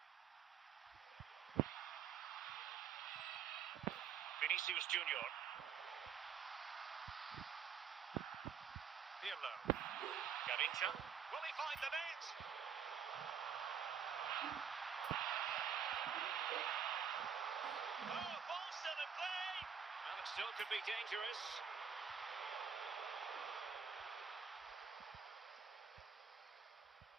Vinicius Junior. Pirlo. Garincha. Will he find the net? Oh, ball still in play. And it still could be dangerous.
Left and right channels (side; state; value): left; quieter; 7.3 dB